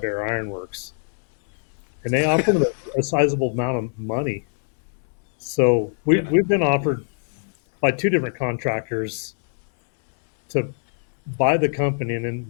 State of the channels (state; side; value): silent; right; digital silence